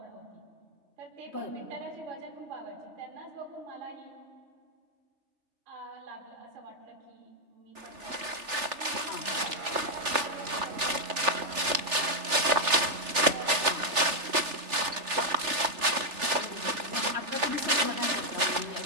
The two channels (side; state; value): left; late; 3.4 ms